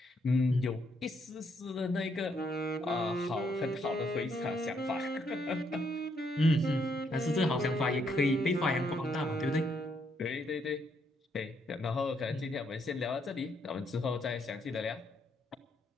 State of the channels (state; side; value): normal; both; correlation 0.74